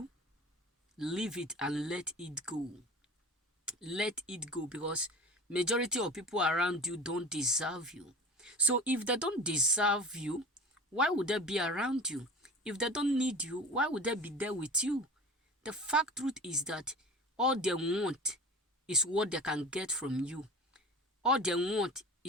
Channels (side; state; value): both; normal; correlation 0.36